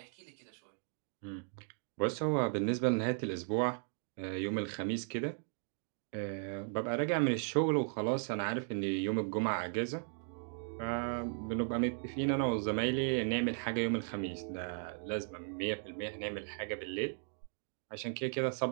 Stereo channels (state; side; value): silent; left; 53 dB below the other